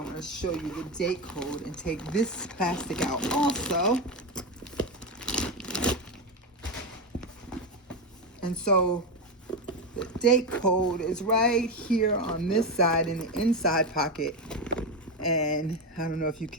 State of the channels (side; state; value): both; normal; correlation 0.12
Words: going to show you the date code and take this plastic out also. And so the date code is right here on this side in the inside pocket. And I don't know if you